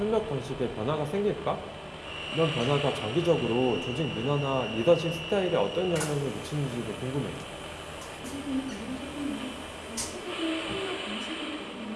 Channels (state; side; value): identical; both; correlation 1.00